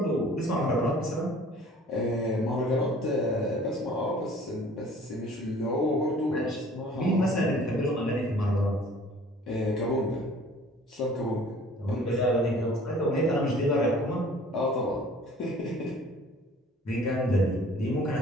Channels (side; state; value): both; normal; correlation 0.50